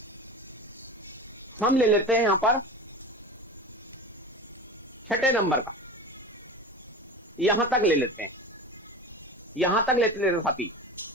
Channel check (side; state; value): both; normal; correlation 0.31